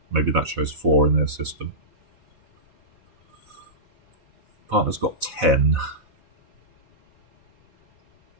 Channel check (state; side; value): late; left; 4.1 ms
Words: Maybe that shows 4 in their system. Partner's got 10.